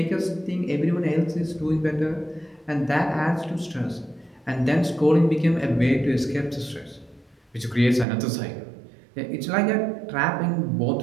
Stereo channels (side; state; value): left; drops out; at 8.1 s